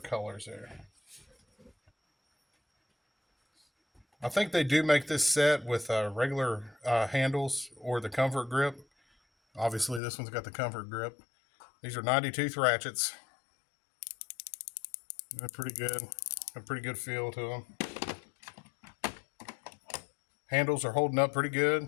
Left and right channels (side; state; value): right; drops out; at 10.0 s